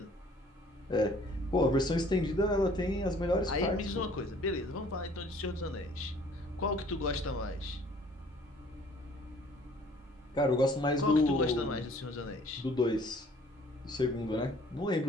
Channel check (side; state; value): both; normal; correlation 0.55